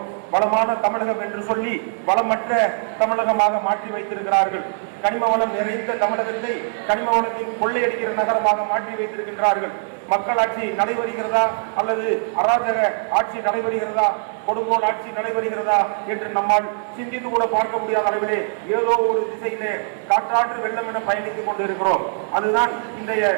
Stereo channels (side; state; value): left; silent; 64 dB below the other